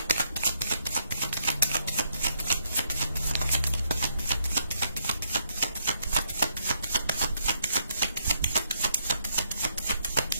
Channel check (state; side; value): inverted; both; correlation -0.74